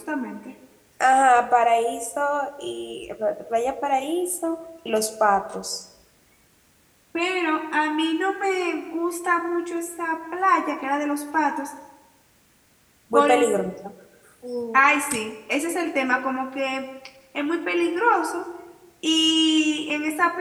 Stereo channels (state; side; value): identical; both; correlation 1.00